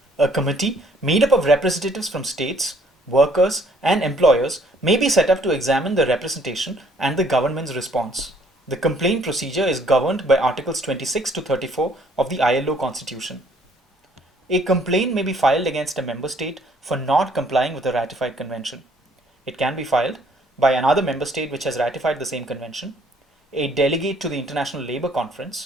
A committee made up of representatives from states, workers, and employers may be set up to examine the representation and the government's response. The complaint procedure is governed by Articles 26 to 34 of the ILO Constitution. A complaint may be filed against a member state for not complying with a ratified convention. It can be filed by another member state which has ratified the same convention, a delegate to the International Labour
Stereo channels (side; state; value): both; normal; correlation 0.62